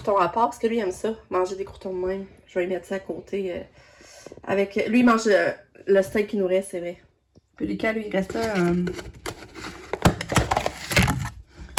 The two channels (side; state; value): both; identical; correlation 1.00